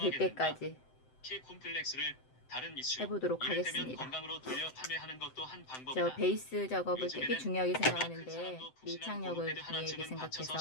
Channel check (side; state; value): right; late; 7.8 ms